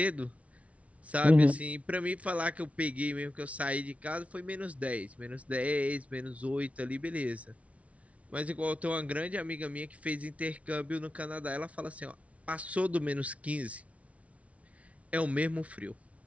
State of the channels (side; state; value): left; late; 0.065 ms